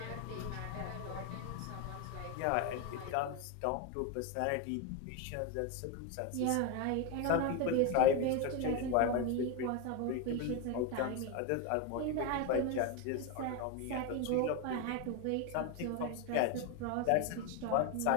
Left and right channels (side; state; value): both; different; correlation 0.02